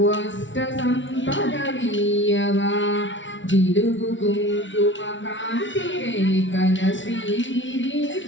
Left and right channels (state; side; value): late; right; 0.55 ms